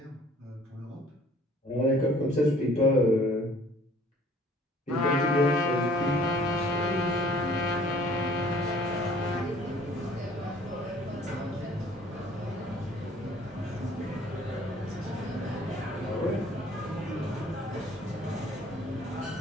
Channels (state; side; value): normal; both; correlation 0.55